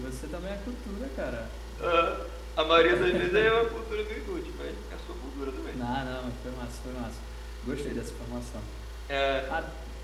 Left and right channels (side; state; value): both; identical; correlation 1.00